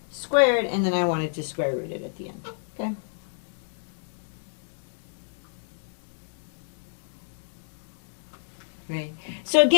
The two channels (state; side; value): silent; right; digital silence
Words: squared, and then I wanted to square root it at the end. Okay. Right. So